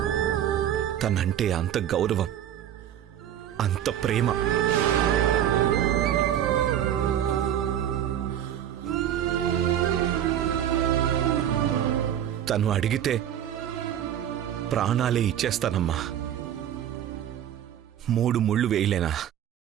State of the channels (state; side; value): quieter; left; 10.5 dB